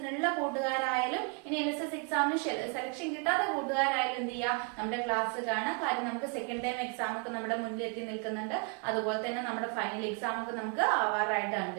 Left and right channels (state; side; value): quieter; left; 35.3 dB